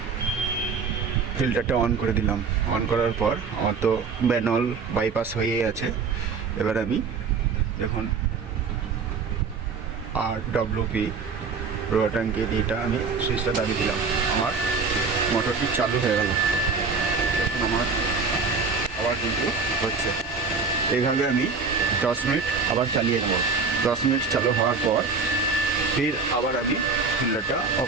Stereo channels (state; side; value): quieter; left; 4.9 dB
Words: ফিল্টারটা অন করে দিলাম। অন করার পর আমার তো ম্যানুয়াল বাইপাস হয়েই আছে। এবার আমি দেখুন RWP রো ট্যাঙ্কি এটা আমি সুইচটা দাবি দিলাম, আমার মোটরটি চালু হয়ে গেল। দেখুন আমার আবার কিন্তু হচ্ছে। এইভাবে আমি 10 মিনিট আবার চালিয়ে নেব। 10 মিনিট চালু হওয়ার পর ফির আবার আমি ফিল্টারটা